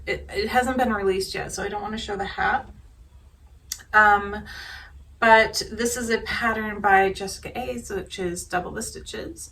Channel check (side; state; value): both; identical; correlation 1.00